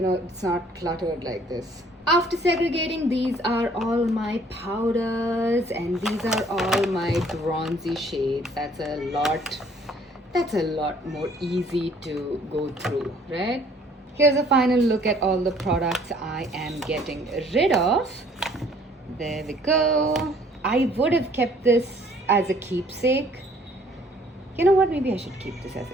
know, it's not cluttered like this. After segregating, these are all my powders and these are all my bronzy shades. That's a lot more easy to go through, right? Here's a final look at all the products I am getting rid of. There we go. I would have kept this as a keepsake. You know what, maybe I should keep this as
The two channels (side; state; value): both; normal; correlation 0.59